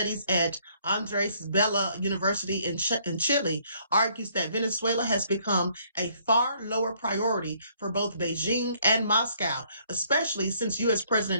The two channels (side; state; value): both; inverted; correlation -0.65